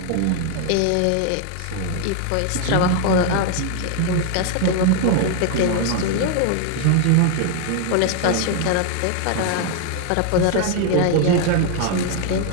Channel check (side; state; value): both; different; correlation 0.00